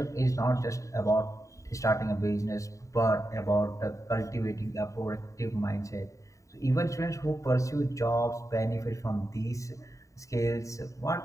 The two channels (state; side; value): late; right; 0.16 ms